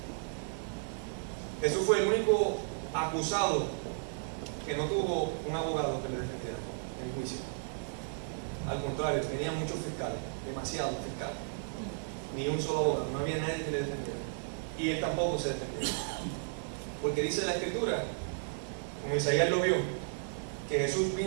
Jesús fue el único acusado que no tuvo un abogado que le defendiera en juicio. Al contrario, tenía muchos fiscales, demasiados fiscales. Ni un solo abogado, no había nadie que le defendiera. Y él tampoco se defendió. Porque dice la Escritura, como Isaías lo vio, que Jesús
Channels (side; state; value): left; silent; digital silence